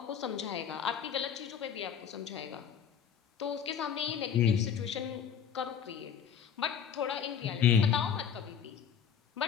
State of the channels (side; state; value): right; quieter; 8.0 dB